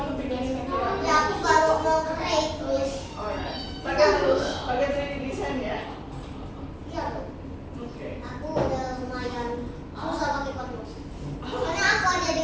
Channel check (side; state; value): both; identical; correlation 1.00